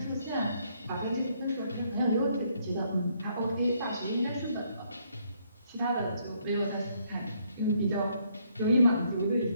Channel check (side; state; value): both; inverted; correlation -0.70